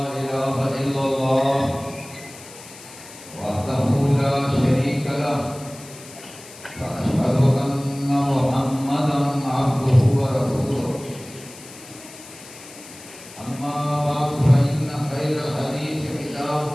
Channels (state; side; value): noise; left; hiss, 18 dB below the sound